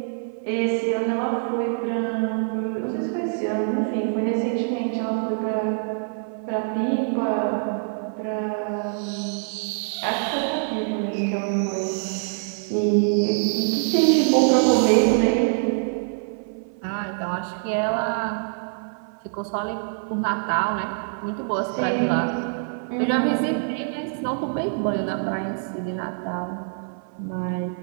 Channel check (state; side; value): silent; left; 58 dB below the other